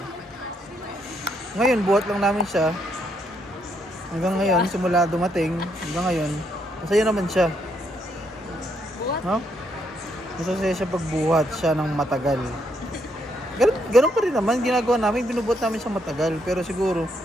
Ngayon, buhat lang namin siya. Hanggang ngayon, simula dumating, hanggang ngayon, masaya naman siya. Buhat? No? Masaya siya pagbuhat siya ng matagal. Ganun pa rin naman, ginagawa namin, binubuhat namin siya matagal. Pero siguro,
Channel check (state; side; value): normal; both; correlation 0.75